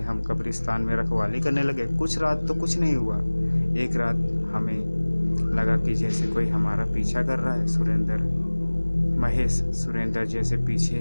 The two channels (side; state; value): both; inverted; correlation -1.00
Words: हम कब्रिस्तान में रखवाली करने लगे। कुछ रात तो कुछ नहीं हुआ, एक रात हमें लगा कि जैसे कोई हमारा पीछा कर रहा है। सुरेंद्र, महेश, सुरेंद्र, जैसे पीछे